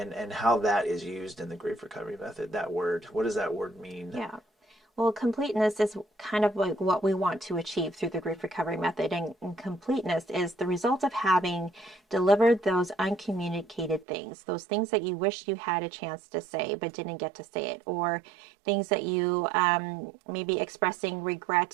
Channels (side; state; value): left; drops out; at 14.1 s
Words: how that is used in the grief recovery method? That word, what does that word mean? Yeah. Well, completeness is kind of like what we want to achieve through the grief recovery method. And completeness is the result of having delivered those uncommunicated things, those things that you wish you had a chance to say but didn't get to say it, or things that you maybe expressing